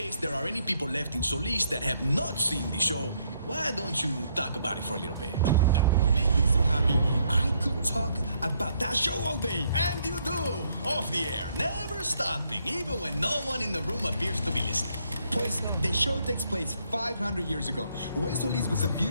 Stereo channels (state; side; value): inverted; both; correlation -0.71